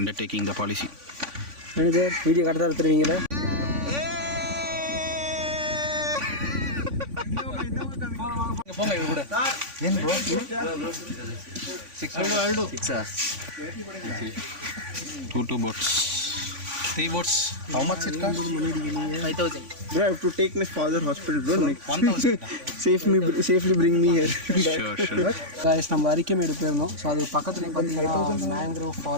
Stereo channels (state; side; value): late; left; 3.5 ms